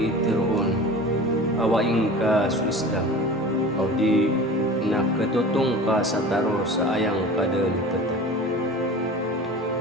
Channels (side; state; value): both; normal; correlation 0.37